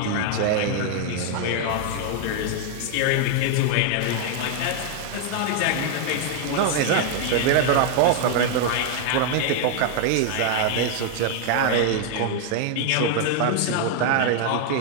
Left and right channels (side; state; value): both; different; correlation 0.00